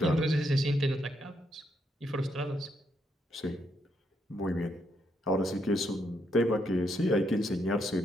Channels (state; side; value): normal; both; correlation 0.77